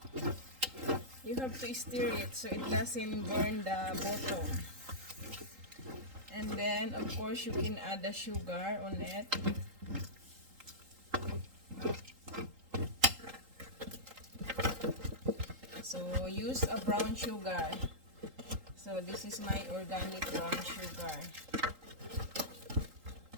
to stir it so it doesn't burn the bottom. And then of course you can add the sugar on it. So use a brown sugar. So this is my organic brown sugar.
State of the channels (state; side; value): late; left; 3.8 ms